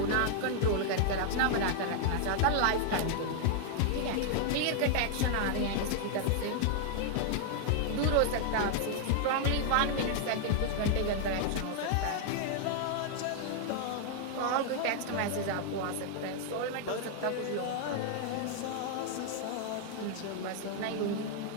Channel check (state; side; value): different; both; correlation 0.00